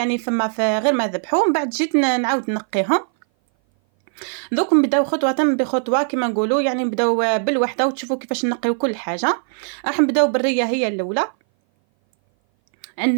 فما في غير ما ذبحوه، من بعد جيت نعاود نقيهم. دوك نبداو خطوه بخطوه كما نقولوا، يعني نبداو بالوحده وتشوفوا كيفاش نقيو كل حاجه. راح نبداو بالريه هي الاولى.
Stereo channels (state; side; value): silent; left; 59 dB below the other